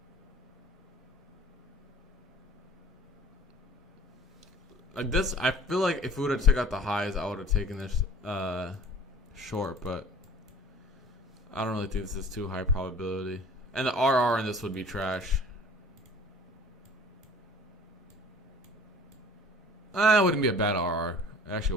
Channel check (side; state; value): both; normal; correlation 0.48